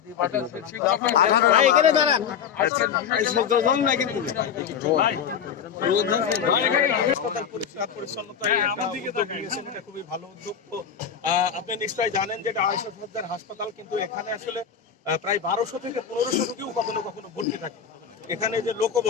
এখানে দাঁড়ান, খুবই ভালো উদ্যোগ। তো আপনি নিশ্চয়ই জানেন যে 250 শয্যার হাসপাতাল, কিন্তু এখানে আসলে প্রায় 1200 থেকে 1500 রোগীও কখনো কখনো ভর্তি থাকে। এখানে যে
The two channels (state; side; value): quieter; right; 7.6 dB